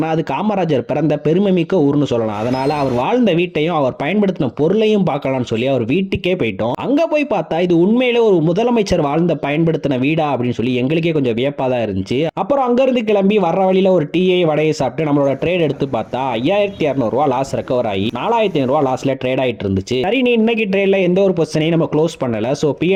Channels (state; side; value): identical; both; correlation 1.00